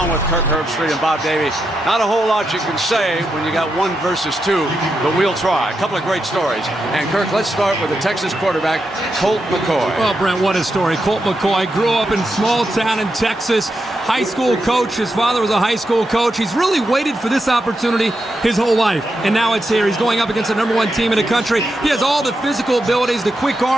with Kirk Herbstreit and Bob Davie. Not a whole lot you can say when you got 1 versus 2, but we'll try. A couple of great stories. And, Kirk, let's start with the Texas quarterback, Colt McCoy. Well, Brent, what a story. Colt McCoy grew up in a small town in Texas, high school coach. His father was a high school coach. He's really waited for this opportunity his whole life, and now it's here. He's going up against the #1 team in the country. He has all the physical abilities, the quick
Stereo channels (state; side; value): normal; both; correlation 0.85